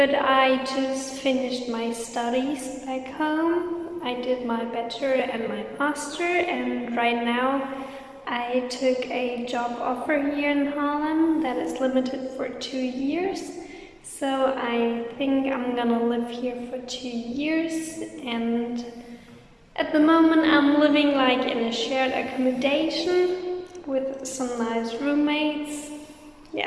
I just finished my studies back home. I did my bachelor and my master, and right now I took a job offer here in Harlem that is limited for 2 years. So I think I'm gonna live here for 2 years, and at the moment I'm living like in a shared accommodation with some nice roommates.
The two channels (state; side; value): identical; both; correlation 1.00